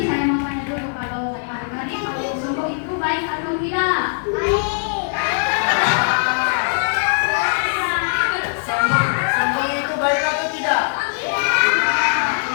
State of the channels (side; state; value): right; silent; digital silence